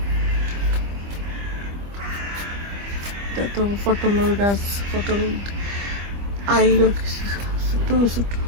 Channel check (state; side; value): late; left; 25 ms